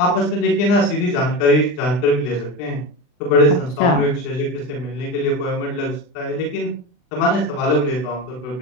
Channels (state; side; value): late; right; 40 ms